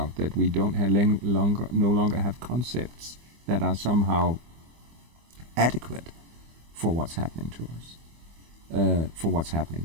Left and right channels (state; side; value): late; left; 25 ms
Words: that we don't have no longer have concepts that are somehow adequate for what's happening to us, for what's